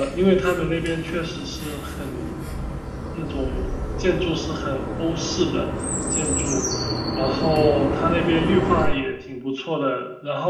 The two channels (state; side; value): identical; both; correlation 1.00